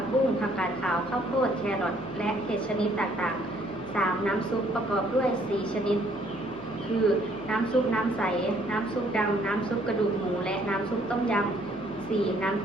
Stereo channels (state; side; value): noise; left; hum, 21 dB below the sound